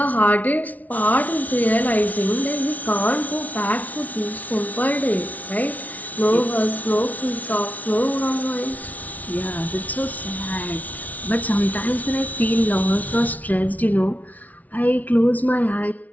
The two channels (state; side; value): late; right; 0.073 ms